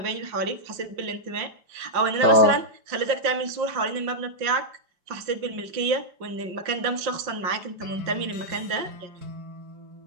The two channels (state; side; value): late; left; 5.6 ms